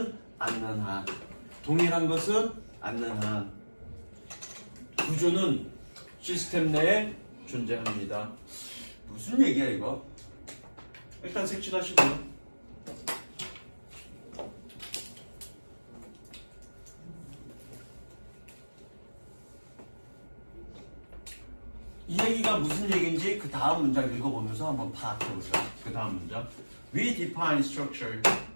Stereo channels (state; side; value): inverted; both; correlation -1.00